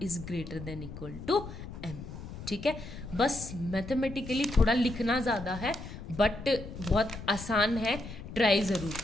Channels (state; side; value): noise; left; rumble, 11 dB below the sound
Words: is greater than equal to m। ठीक है, बस मैथमेटिकली थोड़ा लिखना ज़्यादा है, बट बहुत आसान है, ट्राई ज़रूर